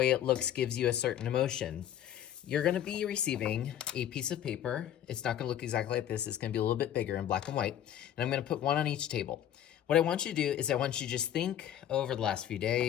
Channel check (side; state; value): right; quieter; 10.8 dB